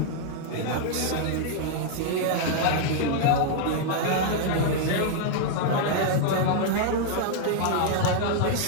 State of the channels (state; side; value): different; both; correlation 0.00